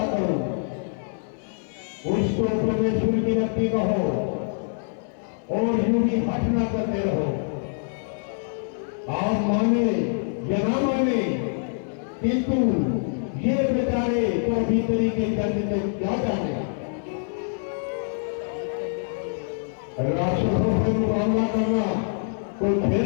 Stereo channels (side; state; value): right; silent; digital silence